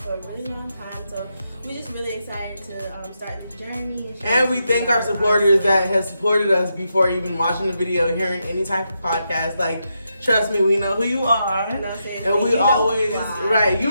a really long time. So we're just really excited to start the journey. And we thank our supporters that have supported us before even watching the video, hearing any type of podcast. Like, trust me, we know who you are. And we always, right,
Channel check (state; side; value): inverted; both; correlation -0.84